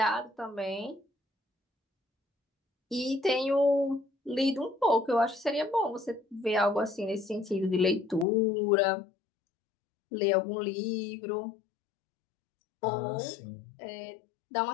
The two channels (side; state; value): right; drops out; at 8.2 s